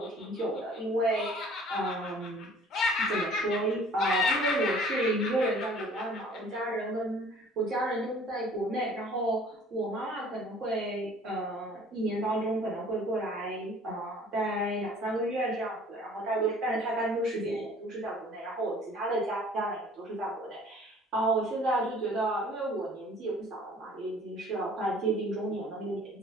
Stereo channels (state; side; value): normal; both; correlation 0.52